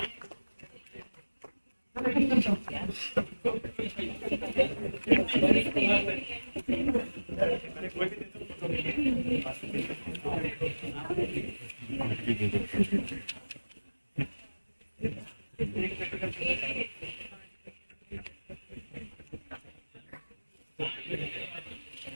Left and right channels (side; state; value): both; inverted; correlation -1.00